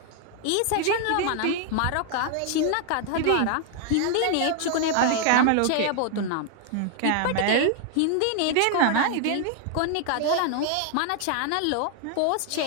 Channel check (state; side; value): different; both; correlation 0.00